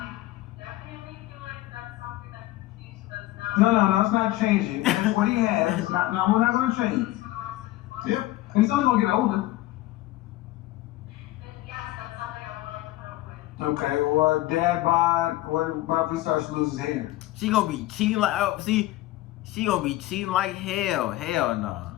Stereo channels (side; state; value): right; quieter; 16.7 dB